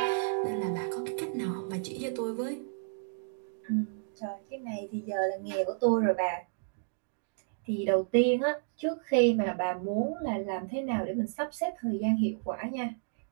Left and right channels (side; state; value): left; silent; digital silence